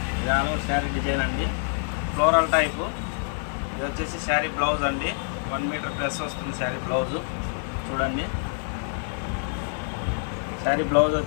ఇది ఆల్ ఓవర్ శారీ డిజైన్ అండి, ఫ్లోరల్ టైపు. ఇది వచ్చేసి శారీ బ్లౌజ్ అండి, 1 మీటర్ ప్లస్ వస్తుంది శారీ బ్లౌజు. చూడండి, శారీ బ్లౌజ్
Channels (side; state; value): right; silent; digital silence